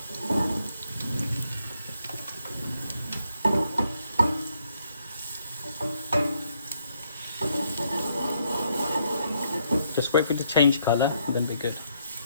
Just wait for it to change colour, and then be good.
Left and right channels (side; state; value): both; inverted; correlation -0.73